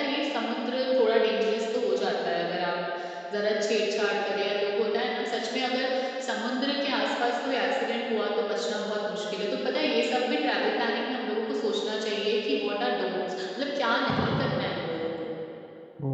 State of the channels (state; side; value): identical; both; correlation 1.00